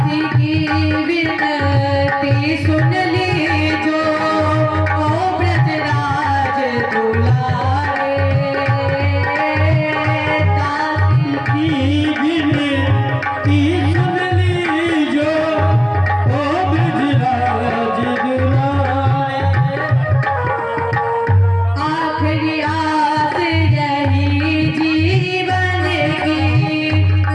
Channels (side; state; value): both; identical; correlation 1.00